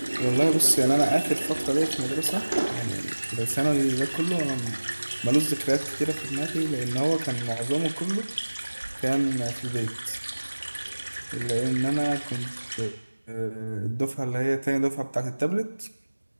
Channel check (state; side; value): inverted; both; correlation -1.00